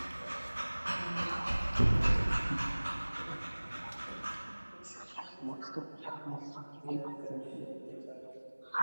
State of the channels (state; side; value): inverted; both; correlation -1.00